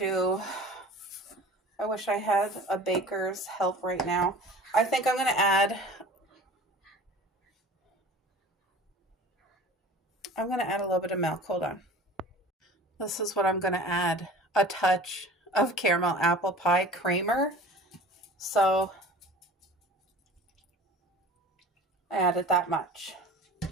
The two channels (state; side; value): normal; both; correlation 0.41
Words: I wish I had a baker's help right now. I think I'm going to add a little bit of milk. Hold on. This is what I'm going to add. A touch of caramel apple pie creamer. So I added that much,